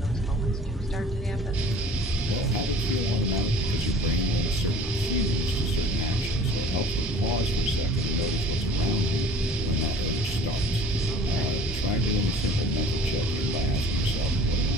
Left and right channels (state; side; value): normal; both; correlation 0.46